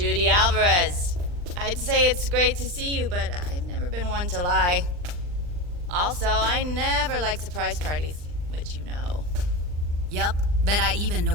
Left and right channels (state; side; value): late; left; 39 ms